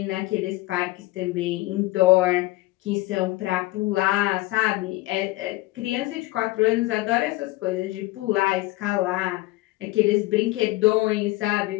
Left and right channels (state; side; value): quieter; right; 19.7 dB